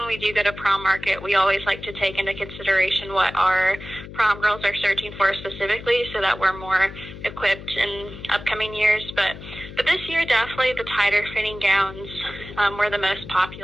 we do go to prom market, we always like to take into consideration what our prom girls are searching for specifically, so that we're more equipped in upcoming years. But this year, definitely the tighter fitting gowns were the most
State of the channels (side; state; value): left; noise; hum, 13 dB below the sound